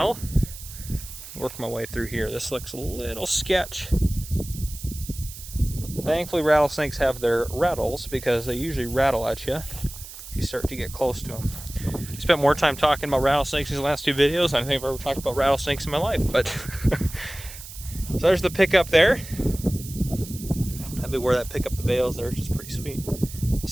Work my way through here. This looks a little sketch. Thankfully, rattlesnakes have their rattles because they usually rattle at you if you start to get close to them. I spent more time talking about rattlesnakes in these last two videos than I think I've ever talked about rattlesnakes in my life. But so there's the pickup there. That'd be where that pick up the bales there, which is pretty sweet.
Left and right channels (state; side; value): noise; right; hiss, 14 dB below the sound